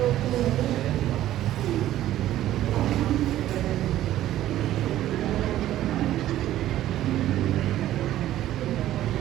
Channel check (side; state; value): left; quieter; 13.5 dB